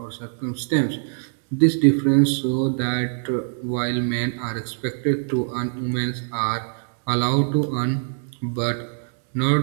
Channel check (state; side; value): silent; left; 63 dB below the other